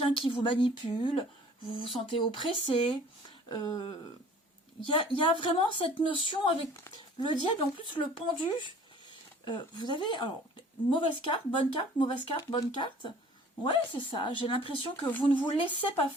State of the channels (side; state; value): both; normal; correlation 0.50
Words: qui vous manipule, vous vous sentez oppressé. Il y a vraiment cette notion avec le diable, en plus le pendu. Vous avez, alors, mauvaise carte, bonne carte, mauvaise carte, bonne carte. Ouais, c'est ça. J'ai l'impression que vous ne vous laissez pas